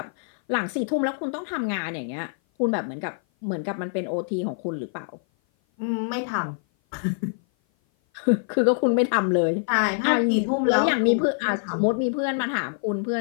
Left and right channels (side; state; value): right; silent; 56 dB below the other